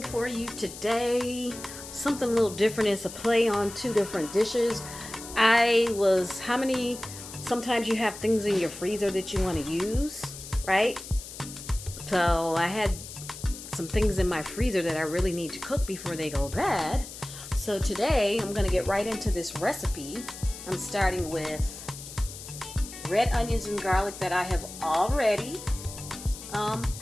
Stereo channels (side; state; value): left; noise; hiss, 13 dB below the sound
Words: for you today. Something a little different. It's a play on two different dishes. Sometimes you have things in your freezer that you want to use, right? So I had some things in my freezer that I really need to cook before they go bad. So today I'm going to get right into this recipe. I'm starting with red onions and garlic that I have already